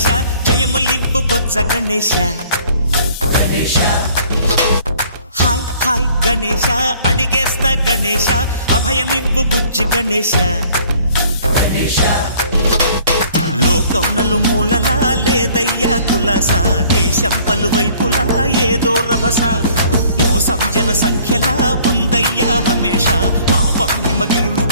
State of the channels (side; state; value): both; inverted; correlation -0.56